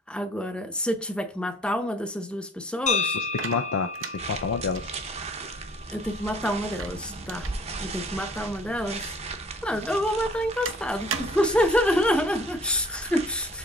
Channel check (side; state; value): both; normal; correlation 0.53